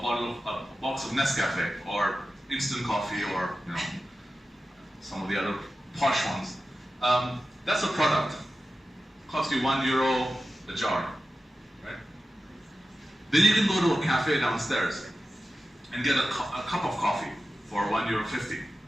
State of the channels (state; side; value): normal; both; correlation 0.93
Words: box of Nescafe or instant coffee or some of the other posh ones. That's a product. Costs you €1 a jar, right? Then you can go to a cafe downstairs and get a cup of coffee for €1.50,